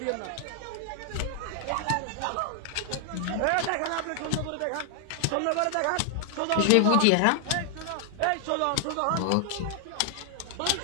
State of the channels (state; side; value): different; both; correlation 0.00